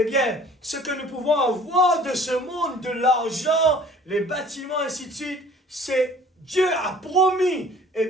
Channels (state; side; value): normal; both; correlation 0.51